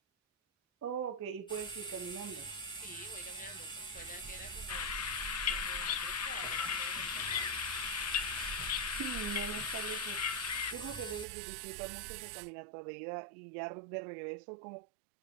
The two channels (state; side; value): drops out; left; at 11.2 s